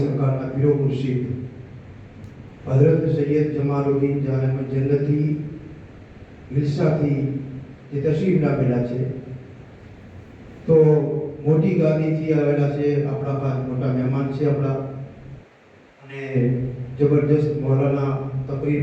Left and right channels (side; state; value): both; identical; correlation 1.00